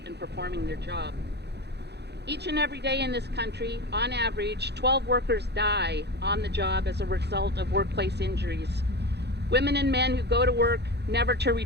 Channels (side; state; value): left; late; 0.49 ms